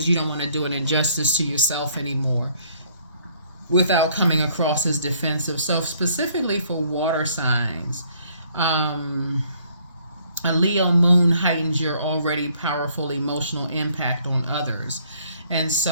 you don't want to do an injustice to yourself anymore without coming across as defensive. So specifically for water signs, a Leo moon heightens your already powerful emotional impact on others. And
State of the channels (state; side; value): inverted; both; correlation -0.63